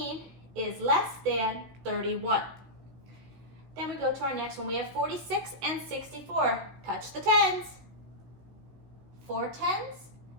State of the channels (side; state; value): left; late; 16 ms